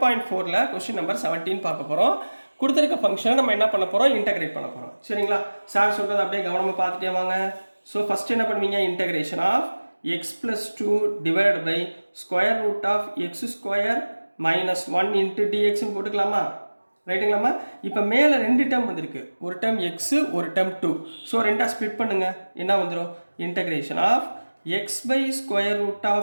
கொஸ்டின் நம்பர் 17 பார்க்க போகிறோம். கொடுத்துருக்க ஃபங்க்ஷனை நம்ம என்ன பண்ண போகிறோம், இன்டகிரேட் பண்ண போகிறோம். சரிங்களா? சார் சொல்கிறது அப்படியே கவனமாக பார்த்துட்டே வாங்க. ஸோ ஃபஸ்ட்டு என்ன பண்ணுவீங்க, integration of x plus 2 divide by square root of x square minus 1 into டிஎக்ஸ்ன்னு போட்டுக்கலாமா? ரைட்டுங்களாம்மா? இப்போ மேலே ரெண்டு டேர்ம் வந்திருக்கு, ஒரு டேர்ம் எக்ஸு ஒரு டேர்ம் 2. ஸோ ரெண்டாக ஸ்ப்ளிட் பண்ணுங்கள், என்ன வந்துடும், integration of x by square root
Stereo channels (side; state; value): both; inverted; correlation -1.00